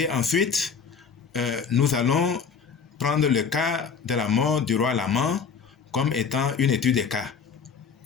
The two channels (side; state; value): right; quieter; 6.0 dB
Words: ensuite nous allons prendre le cas de la mort du roi Laman comme étant une étude des cas.